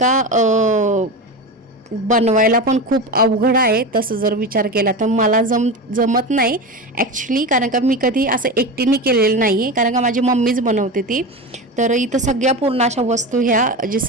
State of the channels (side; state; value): both; normal; correlation 0.23